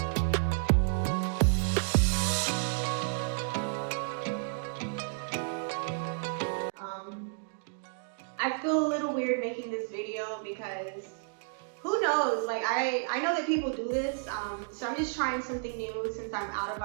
I feel a little weird making this video because who knows, like I know that people do this, so I'm just trying something new since I'm out of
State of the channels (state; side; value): silent; left; digital silence